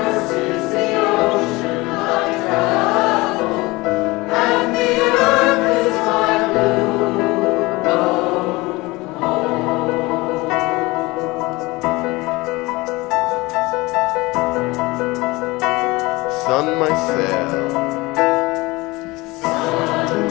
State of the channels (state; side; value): quieter; right; 22.3 dB